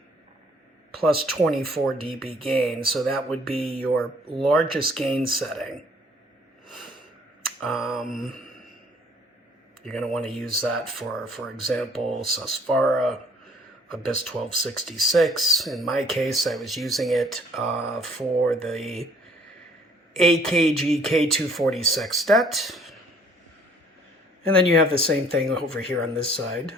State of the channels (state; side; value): normal; both; correlation 0.59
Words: plus 24 dB gain, so that would be your largest gain setting. You're going to want to use that for example, Susvara, Abyss 1266. In my case, I was using it for the AKG K240 sextet. And then you have the same thing over here on this side